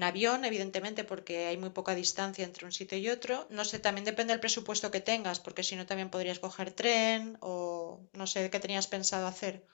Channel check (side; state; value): right; silent; 53 dB below the other